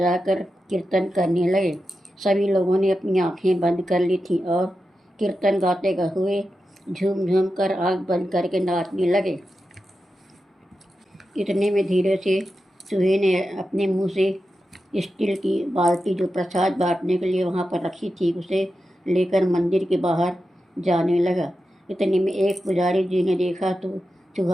कर कीर्तन करने लगे। सभी लोगों ने अपनी आंखें बंद कर ली थी और कीर्तन गाते हुए झूम झूम कर आँख बंद करके नाचने लगे। इतने में धीरे से चूहे ने अपने मुंह से स्टील की बाल्टी, जो प्रसाद बांटने के लिए वहाँ पर रखी थी, उसे लेकर मंदिर के बाहर जाने लगा। इतने में एक पुजारी जी ने देखा तो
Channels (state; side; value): normal; both; correlation 0.90